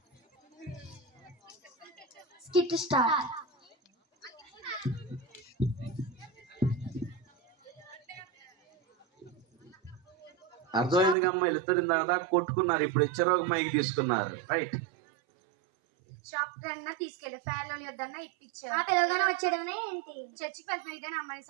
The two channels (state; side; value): drops out; left; at 11.2 s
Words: Skit start. అర్థమైంది అమ్మ, వీళ్ళిద్దరు దాకా కొట్టుకున్నారు, ఇప్పుడు ఇచ్చారు ఒక మైక్ తీసుకున్నారు. రైట్. షాప్ అన్నా తీసుకెళ్ళి ఫైర్లో వద్దన్నా ఇప్పించారు. పిల్లగానే వచ్చేయడమే ఏంటి? చర్చికి వెళ్తున్నావు, ఇదేనా అమ్మాయి